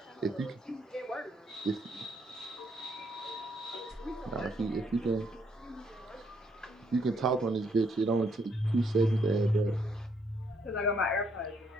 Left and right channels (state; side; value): normal; both; correlation 0.71